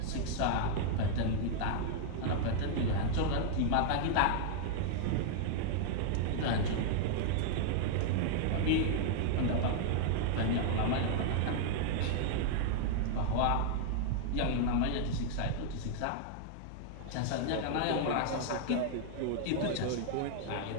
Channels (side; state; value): both; different; correlation 0.00